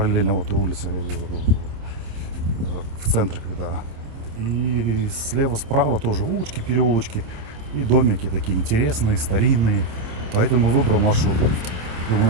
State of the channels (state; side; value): late; left; 27 ms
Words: вот этой улице, в центре, когда. И слева, справа тоже улочки, переулочки и домики такие интересные, старинные. Поэтому выбрал маршрут. Его